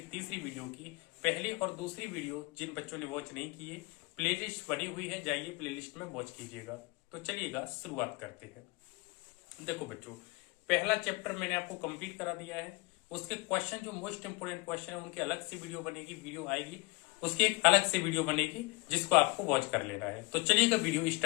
तीसरी वीडियो की। पहली और दूसरी वीडियो जिन बच्चों ने वॉच नहीं किए, प्लेलिस्ट बनी हुई है, जाइए प्लेलिस्ट में वॉच कीजिएगा। तो चलिएगा शुरुआत करते हैं। देखो बच्चों, पहला चैप्टर मैंने आपको कंप्लीट करा दिया है। उसके क्वेश्चन जो मोस्ट इंपोर्टेंट क्वेश्चन है उनकी अलग से वीडियो बनेगी, वीडियो आएगी, उसकी एक अलग से वीडियो बनेगी जिसको आपको वॉच कर लेना है। तो चलिएगा वीडियो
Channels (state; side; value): quieter; right; 24.9 dB